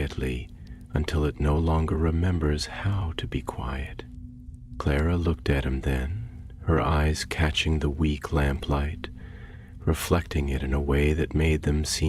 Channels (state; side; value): identical; both; correlation 1.00